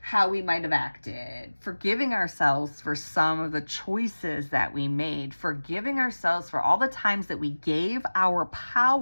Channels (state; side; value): inverted; both; correlation -1.00